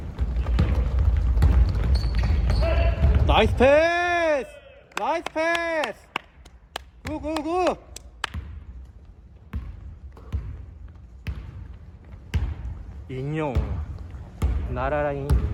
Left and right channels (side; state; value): both; identical; correlation 1.00